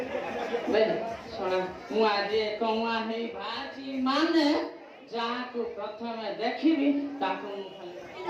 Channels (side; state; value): both; identical; correlation 1.00